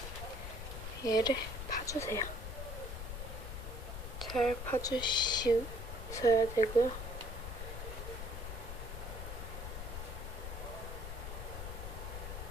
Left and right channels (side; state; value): left; noise; rumble, 6 dB below the sound